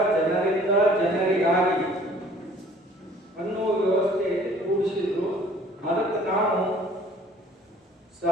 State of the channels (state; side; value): normal; both; correlation 0.54